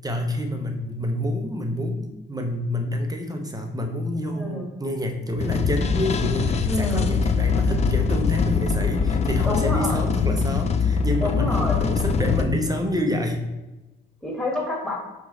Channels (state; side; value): quieter; right; 3.2 dB